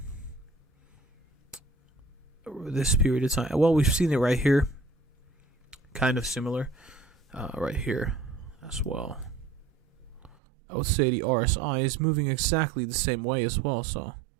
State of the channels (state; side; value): drops out; left; at 10.4 s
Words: This period of time. Well, we've seen it right here. Kind of similar. Right here as well. I would say the RSI is moving exactly the same way as well. So